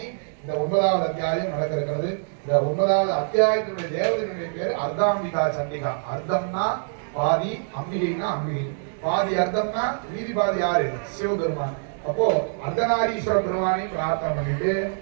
இந்த 9வது அத்தியாயம் நடக்க இருக்கிறது. இந்த 9வது அத்தியாயத்தினுடைய தேவதையினுடைய பேர் அர்த்தாம்பிகா சண்டிகா. அர்த்தம்னா பாதி, அம்பிகைனா அம்பிகை. பாதி அர்த்தம்னா மீதி பாதி யாரு? சிவபெருமான். அப்போ அர்த்தநாரீஸ்வர பெருமானை பிரார்த்தனை பண்ணிட்டு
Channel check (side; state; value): left; silent; digital silence